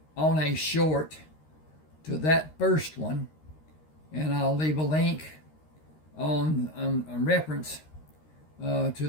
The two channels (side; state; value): right; late; 13 ms